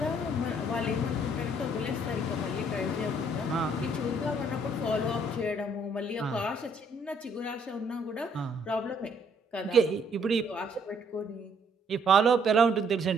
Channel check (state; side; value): normal; both; correlation 0.66